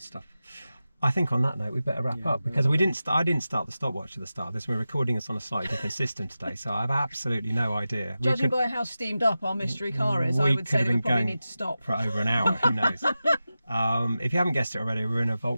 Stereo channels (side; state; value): both; inverted; correlation -0.93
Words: stuff. I think on that note, we better wrap up, because I didn't start the stopwatch at the start of this. We're recording this on a slightly different system today, so I have absolutely no idea. Judging by how steamed up our mystery car is, I would say that we probably need to stop. For over an hour, who knows? If you haven't guessed it already, we're in a